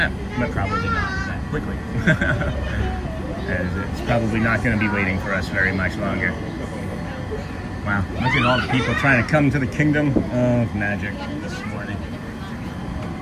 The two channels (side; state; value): both; identical; correlation 1.00